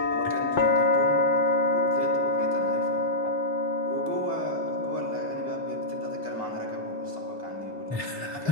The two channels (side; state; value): right; late; 3.6 ms